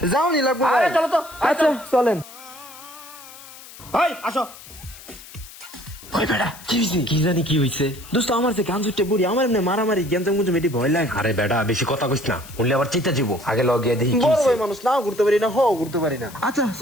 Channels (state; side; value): noise; left; hiss, 18 dB below the sound